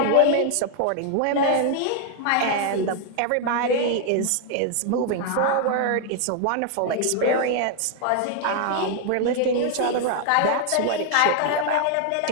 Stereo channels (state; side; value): different; both; correlation 0.00